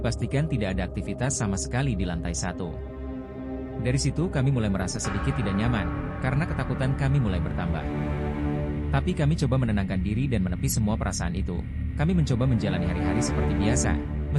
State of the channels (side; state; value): both; identical; correlation 1.00